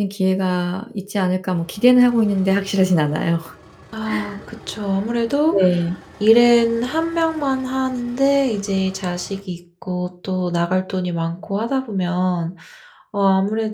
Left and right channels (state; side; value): identical; both; correlation 1.00